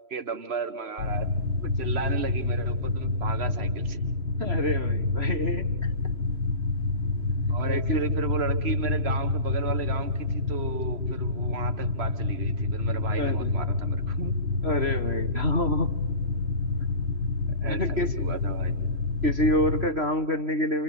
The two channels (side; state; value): left; late; 3.0 ms